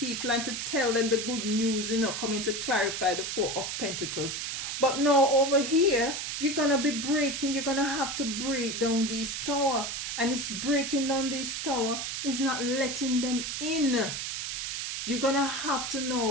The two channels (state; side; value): noise; right; hiss, 4 dB below the sound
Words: and to tell them the good news, coming to clarify the Four of Pentacles. But now over here, you're going to have to break down this tower. And it's breaking down this tower is not letting them in. You're going to have to